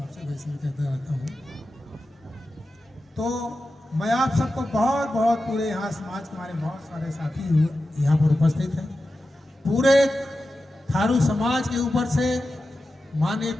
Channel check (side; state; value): both; normal; correlation 0.92